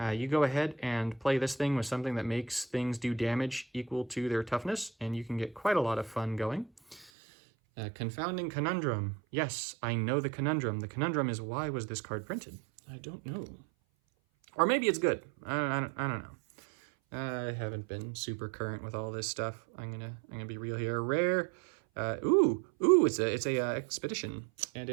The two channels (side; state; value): left; drops out; at 7.1 s